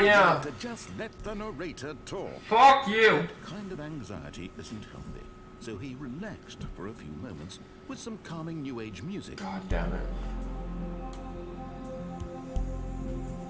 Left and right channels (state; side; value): identical; both; correlation 1.00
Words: yeah. to just let the narrator talk. Fuck you! Kind of anxiety isn't healthy, so he relaxed for a few moments with some calming new age music. God damn it.